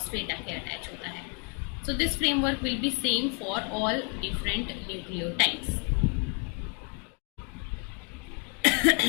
आके अटैच होता है। So this framework will be same for all different nucleotides.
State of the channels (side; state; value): right; quieter; 35.7 dB